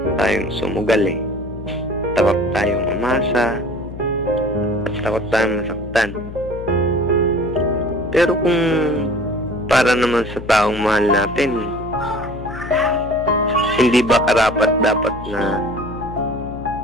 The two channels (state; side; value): noise; left; hum, 11 dB below the sound